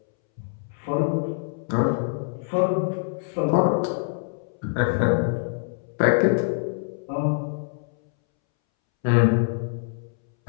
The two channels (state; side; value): silent; right; 62 dB below the other